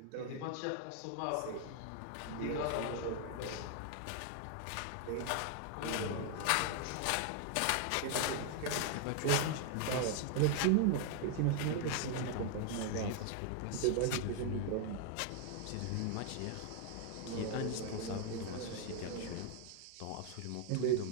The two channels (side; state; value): both; different; correlation 0.00